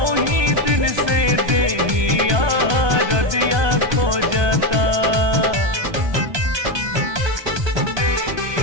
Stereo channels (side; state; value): left; late; 1.2 ms